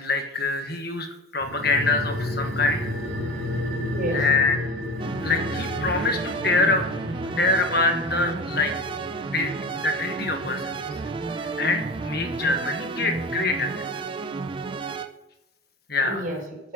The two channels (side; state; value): both; normal; correlation 0.32